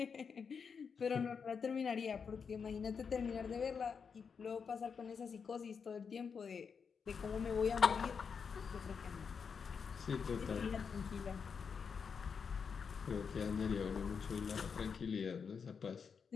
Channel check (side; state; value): right; quieter; 6.1 dB